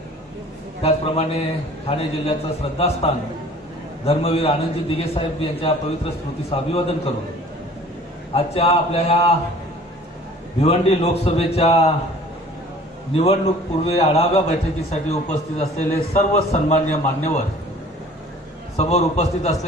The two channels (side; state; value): both; normal; correlation 0.49